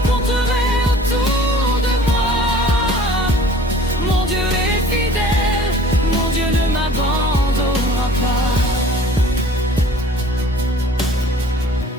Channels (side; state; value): both; normal; correlation 0.49